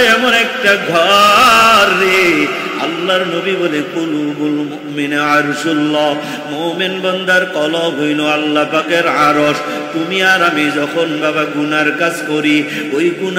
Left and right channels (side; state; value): both; identical; correlation 1.00